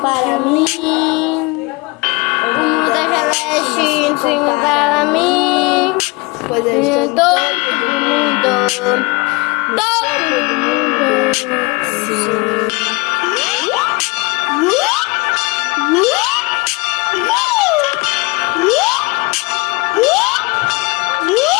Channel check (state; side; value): quieter; right; 26.0 dB